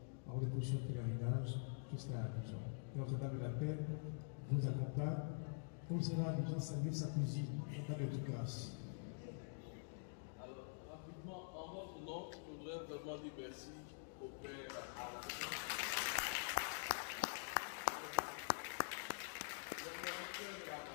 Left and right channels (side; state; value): right; silent; digital silence